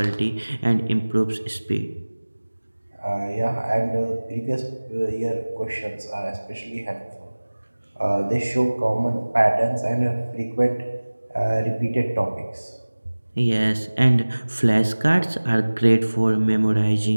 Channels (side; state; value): both; inverted; correlation -1.00